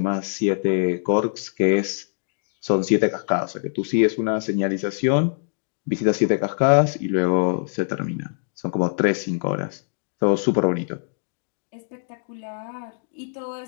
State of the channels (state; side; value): silent; right; digital silence